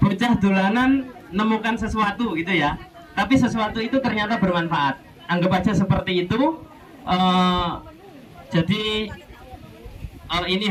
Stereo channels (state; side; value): identical; both; correlation 1.00